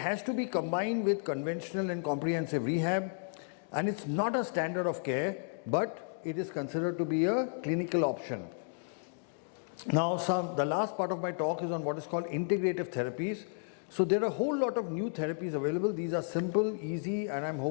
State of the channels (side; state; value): right; silent; digital silence